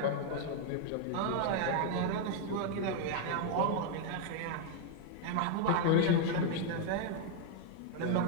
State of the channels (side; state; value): both; different; correlation 0.00